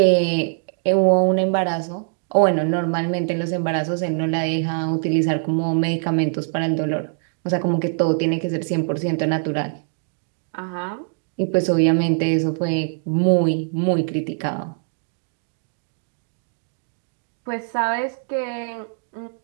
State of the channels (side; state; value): left; silent; digital silence